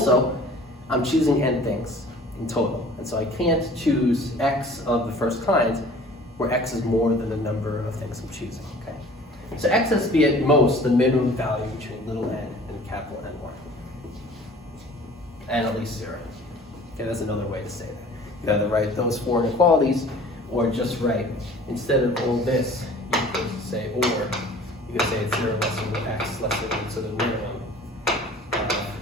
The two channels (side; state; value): both; normal; correlation 0.47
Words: I'm choosing n things in total. And so I can't choose x of the first kind where x is more than the number of things I'm choosing. Okay? So x has to be at most the minimum value between little n and capital N1. And at least 0. Okay, that's another way to say that. You either write those 4 inequalities, or just write, instead of all this, you could say or. You could say it's 0 less than x less than so the minimum